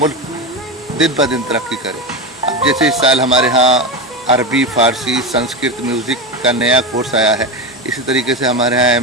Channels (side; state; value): both; normal; correlation 0.17